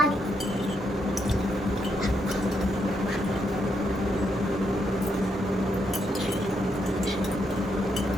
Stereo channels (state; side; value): normal; both; correlation 0.79